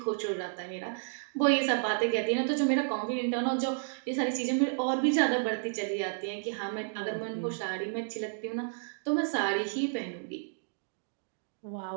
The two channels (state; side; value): silent; left; digital silence